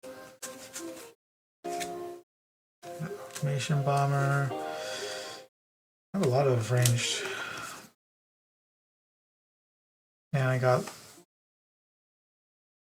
Information Bomber. I have a lot of ranged. And I got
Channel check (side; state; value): both; identical; correlation 1.00